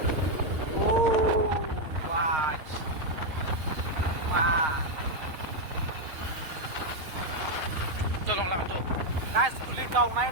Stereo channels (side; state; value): left; late; 6.4 ms